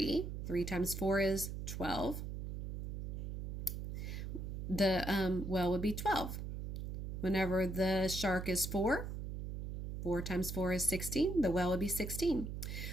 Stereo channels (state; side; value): noise; right; hum, 5 dB below the sound